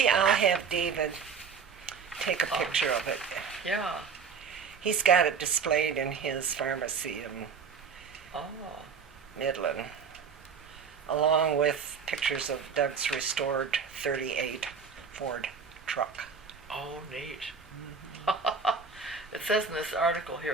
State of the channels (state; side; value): quieter; left; 6.0 dB